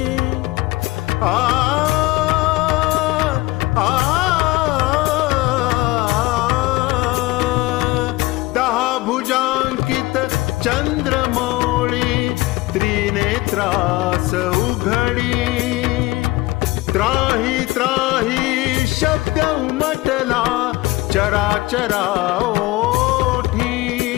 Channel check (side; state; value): right; quieter; 20.0 dB